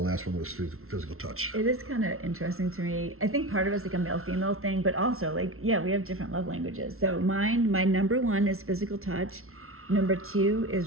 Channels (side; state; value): left; late; 0.62 ms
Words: one was physical touch. It is kind of interesting to me. I think part of it's like a male-female thing, but also like, yeah, we have different love languages. So my number one is physical touch. Number two